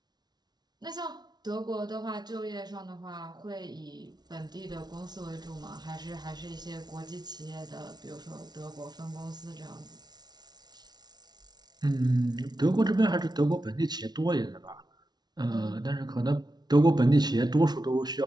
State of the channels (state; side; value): late; left; 0.19 ms